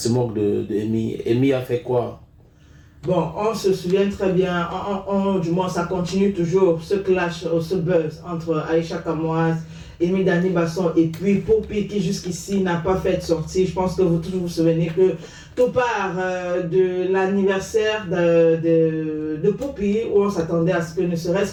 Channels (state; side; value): identical; both; correlation 1.00